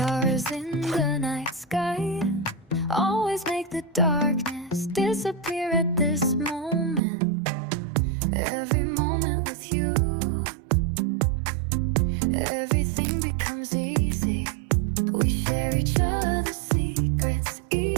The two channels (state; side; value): drops out; left; at 7.0 s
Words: in the night sky, always make the darkness disappear at this moment. Every moment with you, everything becomes easy. We share each other's secrets,